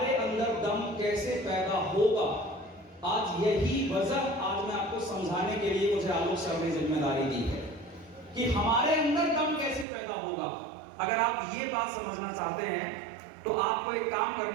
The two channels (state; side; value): drops out; left; at 9.9 s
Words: अंदर दम कैसे पैदा होगा, आज यही वजह आज मैं आपको समझाने के लिए मुझे आलोक सर ने जिम्मेदारी दी है कि हमारे अंदर दम कैसे पैदा होगा। अगर आप ये बात समझना चाहते हैं तो आपको एक काम